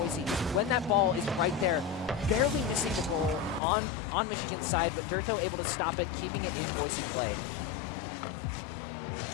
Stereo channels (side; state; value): right; drops out; at 3.6 s